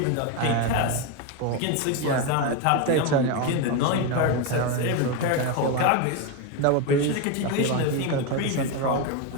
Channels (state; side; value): different; both; correlation 0.03